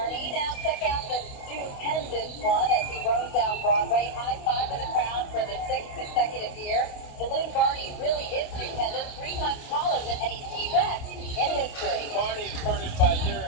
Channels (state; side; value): late; right; 29 ms